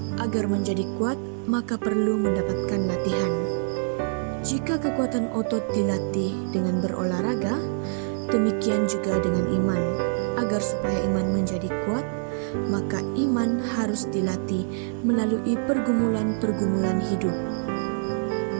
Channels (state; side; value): silent; left; digital silence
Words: Agar menjadi kuat, maka perlu mendapatkan latihan. Jika kekuatan otot dilatih dengan berolahraga, demikian juga dengan iman. Agar supaya iman menjadi kuat, maka iman harus dilatih melalui pergumulan-pergumulan hidup.